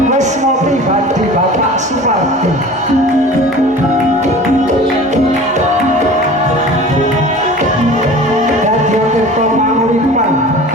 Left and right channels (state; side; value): normal; both; correlation 0.40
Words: wis ngopi badhe Bapak Supardi. Dadi tirta panguripan